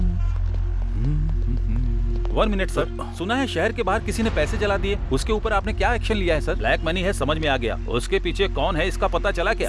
वन मिनट सर, सुना है शहर के बाहर किसी ने पैसे जला दिए, उसके ऊपर आपने क्या एक्शन लिया है सर? ब्लैक मनी है, समझ में आ गया। उसके पीछे कौन है इसका पता चला क्या?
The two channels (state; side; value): identical; both; correlation 1.00